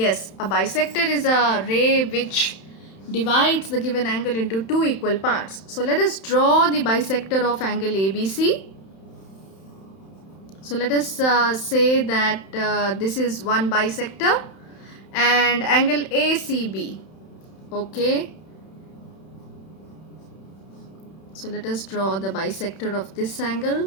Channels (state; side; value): late; right; 31 ms